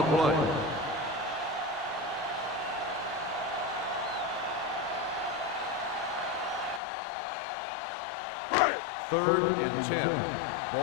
play. Third and 10.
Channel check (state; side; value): drops out; right; at 6.8 s